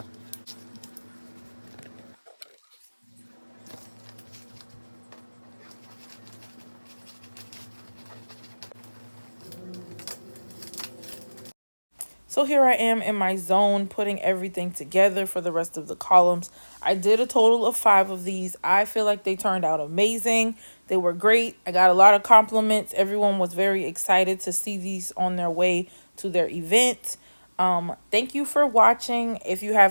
So here I am in my zone, putting everything together for the rest of the columns. I did a total of 5 of these. I feel like they turned out amazing. They were great. I got a lot of compliments. Everyone was very excited to see these on their way to their event. Thank you for watching. If you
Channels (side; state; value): both; inverted; correlation -1.00